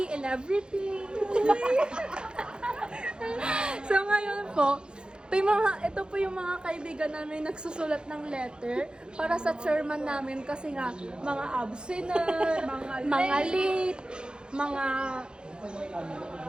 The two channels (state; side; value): late; left; 0.049 ms